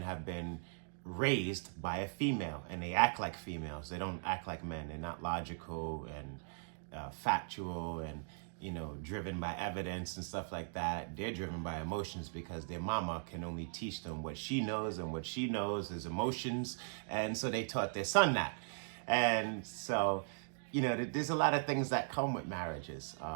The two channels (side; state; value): left; silent; digital silence